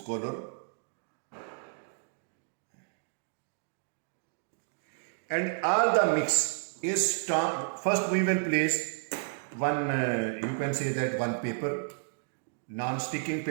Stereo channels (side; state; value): left; silent; digital silence